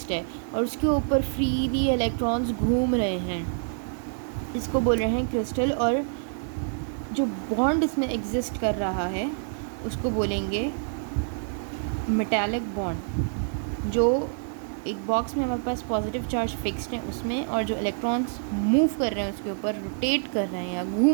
है और उसके ऊपर फ्रीली इलेक्ट्रॉन्स घूम रहे हैं। इसको बोल रहे हैं क्रिस्टल। और जो बॉन्ड इसमें एग्जिस्ट कर रहा है उसको बोलेंगे मेटालिक बॉन्ड। जो एक बॉक्स में हमारे पास पॉजिटिव चार्ज फिक्स्ड है उसमें, और जो इलेक्ट्रॉन्स मूव कर रहे हैं उसके ऊपर, रोटेट कर रहे हैं या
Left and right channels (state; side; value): silent; left; digital silence